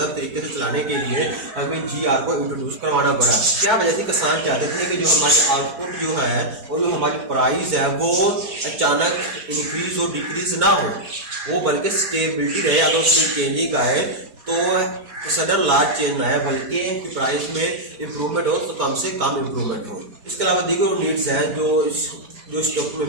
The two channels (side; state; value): left; late; 4.5 ms